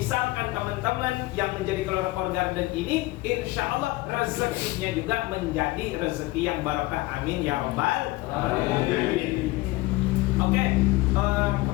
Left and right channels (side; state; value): right; quieter; 20.1 dB